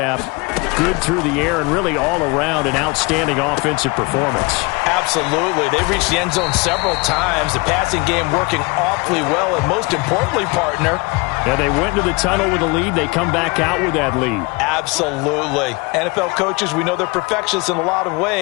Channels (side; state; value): right; quieter; 26.5 dB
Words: good through the air and really all around an outstanding offensive performance. Absolutely. They reached the end zone several times. The passing game working awfully well, and most importantly, partner. Yeah, they went into the tunnel with a lead. They come back out with that lead. Absolutely. NFL coaches, we know they're perfectionists in a lot of